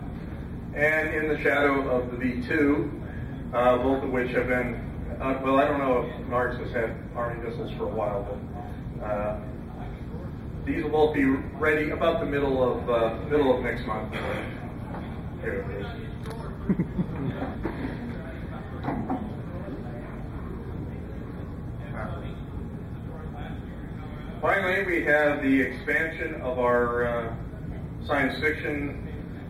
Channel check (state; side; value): identical; both; correlation 1.00